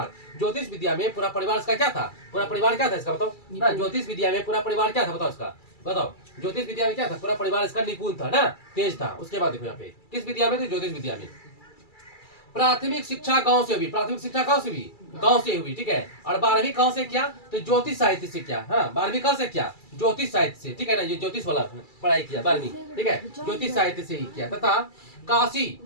ज्योतिष विद्या में पूरा परिवार इसका क्या था? पूरा परिवार क्या था इसका बताओ ना? ज्योतिष विद्या में पूरा परिवार क्या था बताओ इसका? बताओ, ज्योतिष विद्या में क्या था? पूरा परिवार इसका निपुण था ना, तेज था। उसके बाद देखो यहाँ पे किस विद्या में थे? ज्योतिष विद्या में। प्राथमिक शिक्षा गांव से हुई, प्राथमिक शिक्षा गांव से हुई, गांव से हुई, ठीक है। और 12वीं कहां से किया? तो ज्योतिष साहित्य से किया। हाँ, 12वीं कहां से किया? ज्योतिष साहित्य से, ठीक है ना। ये ज्योतिष वाला पढ़ाई किया 12वीं, ठीक है, ज्योतिष साहित्य से ही किया। तथा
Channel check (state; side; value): late; right; 2.3 ms